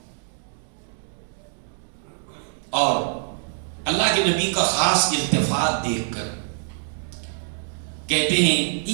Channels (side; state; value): left; silent; 62 dB below the other